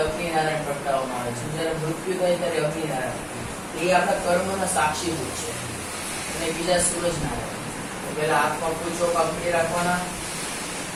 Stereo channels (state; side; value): identical; both; correlation 1.00